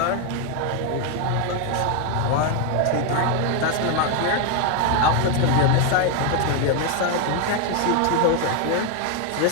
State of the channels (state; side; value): different; both; correlation 0.01